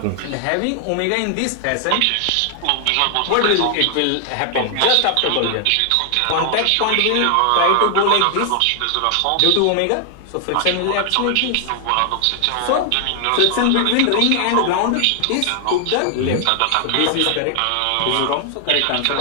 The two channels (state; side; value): different; both; correlation 0.00